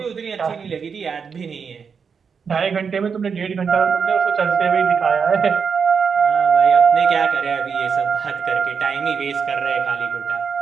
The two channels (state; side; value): quieter; left; 6.1 dB